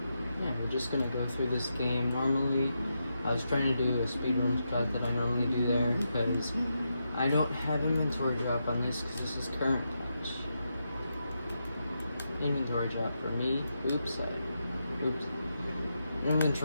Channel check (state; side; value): inverted; both; correlation -0.85